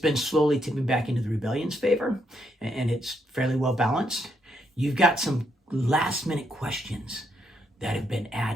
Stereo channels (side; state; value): both; normal; correlation 0.76